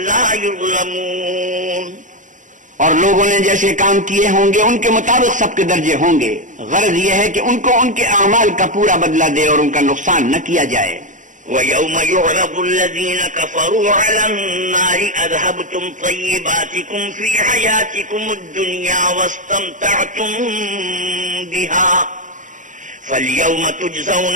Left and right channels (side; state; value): left; late; 0.37 ms